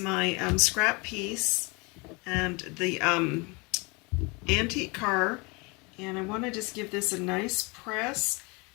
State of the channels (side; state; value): right; quieter; 28.3 dB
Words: scrap piece and the antique car, and I want to just give this a nice press